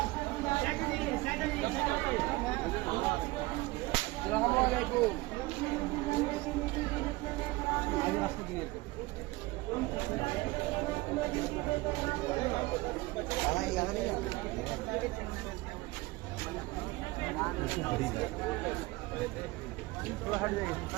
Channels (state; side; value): quieter; left; 21.3 dB